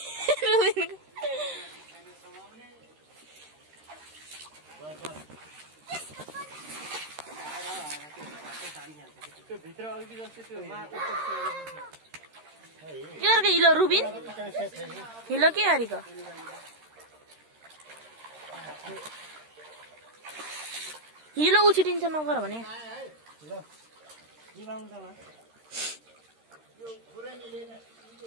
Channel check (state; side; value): late; left; 13 ms